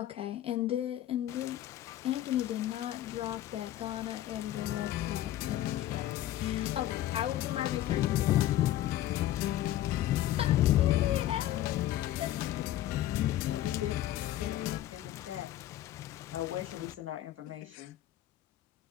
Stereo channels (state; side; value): quieter; right; 13.4 dB